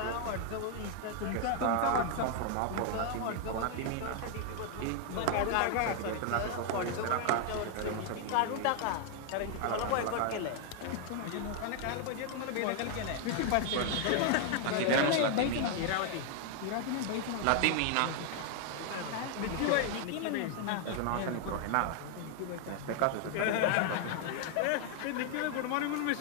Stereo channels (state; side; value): different; both; correlation 0.00